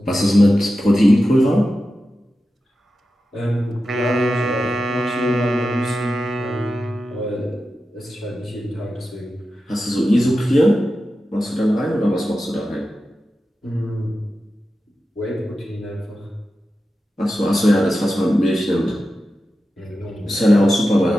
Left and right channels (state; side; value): normal; both; correlation 0.92